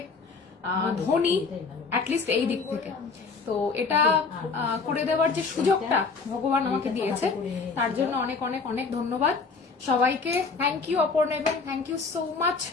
ধনী, অ্যাটলিস্ট এই দিক থেকে। তো এটা করে দেওয়ার যে সুযোগটা ভগবান আমাকে দিয়েছে, তার জন্য অনেক অনেক অনেক ধন্যবাদ সবাইকে। থ্যাংক ইউ অপর্ণা, এবং থ্যাংক ইউ সো মাচ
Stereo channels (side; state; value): right; quieter; 4.6 dB